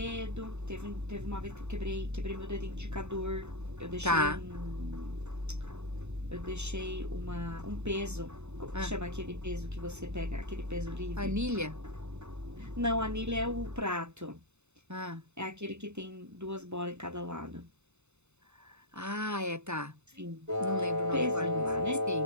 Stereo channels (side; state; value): left; late; 0.82 ms